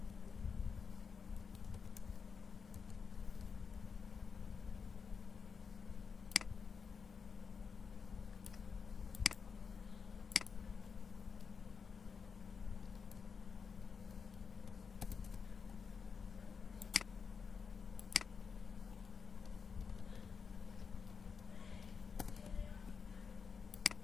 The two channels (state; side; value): quieter; right; 5.8 dB